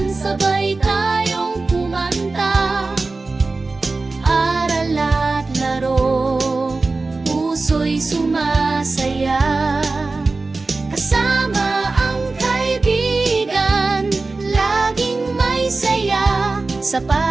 sabay tayong kumanta. Aral at laro, puso'y sumasaya. Kasama ang kaibigan, laging may saya. Sa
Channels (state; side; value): quieter; left; 3.6 dB